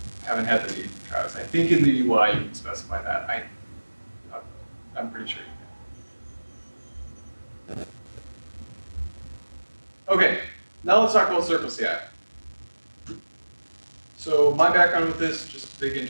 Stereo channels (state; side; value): inverted; both; correlation -1.00